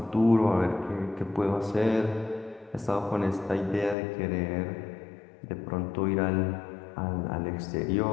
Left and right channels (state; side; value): drops out; right; at 4.0 s